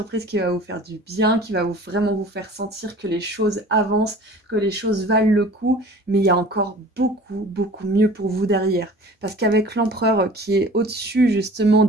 qui va vous faire du bien, qui va vraiment vous faire sentir que les choses avancent, que les choses valent le coup, mais il y a encore beaucoup, beaucoup mieux pour vous derrière. Parce qu'avec l'empereur qui est au-dessus justement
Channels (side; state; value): both; normal; correlation 0.44